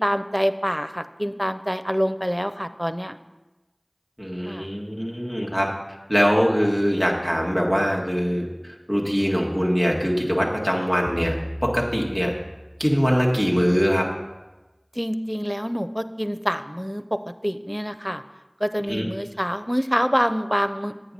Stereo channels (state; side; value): identical; both; correlation 1.00